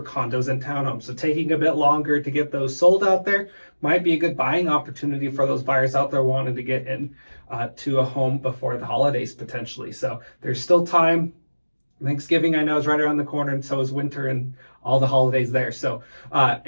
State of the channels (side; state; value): both; inverted; correlation -1.00